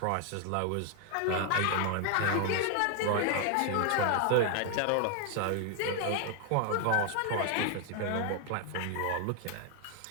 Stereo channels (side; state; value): both; different; correlation 0.00